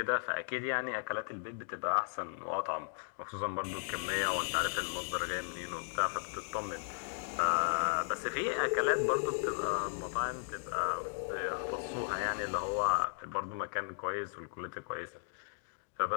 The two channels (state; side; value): silent; right; digital silence